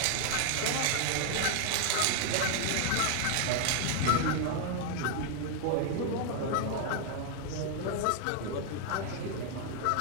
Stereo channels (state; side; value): different; both; correlation 0.00